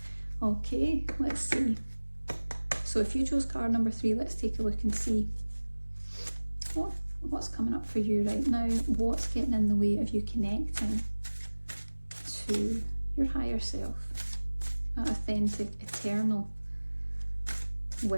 Okay, let's see. So if you chose card number 3, let's take a look and see what's coming up for you right now. What's getting in the way of you connecting to your higher self, that authentic, eternal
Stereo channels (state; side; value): inverted; both; correlation -1.00